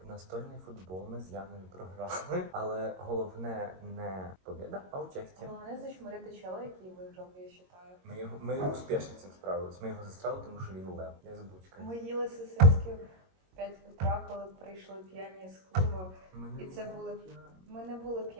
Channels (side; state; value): left; late; 22 ms